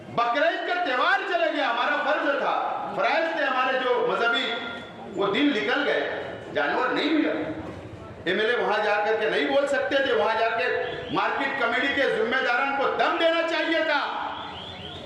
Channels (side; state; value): both; identical; correlation 1.00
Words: बकरीद का त्योहार चला गया, हमारा फर्ज था, फराइज थे हमारे जो मजहबी, वो दिन निकल गए, जानवर नहीं मिला। एमएलए वहां जाकर के नहीं बोल सकते थे, वहां जाकर मार्केट कमेटी के जिम्मेदारों को दम देना चाहिए था